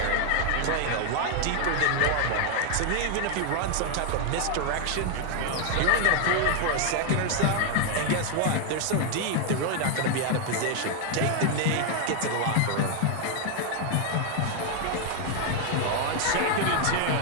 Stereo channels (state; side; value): different; both; correlation 0.00